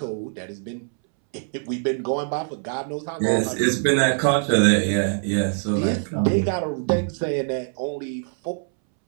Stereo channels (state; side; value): silent; left; 63 dB below the other